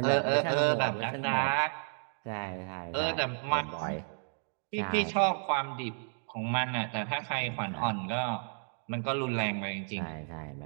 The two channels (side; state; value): left; silent; 56 dB below the other